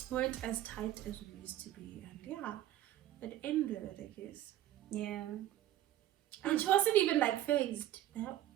weren't as tight as we used to be, and yeah, it ended, I guess. Yeah. And she wasn't even like phased.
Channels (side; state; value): left; quieter; 13.1 dB